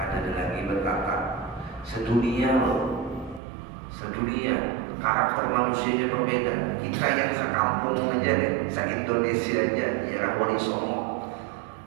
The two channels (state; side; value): drops out; left; at 3.4 s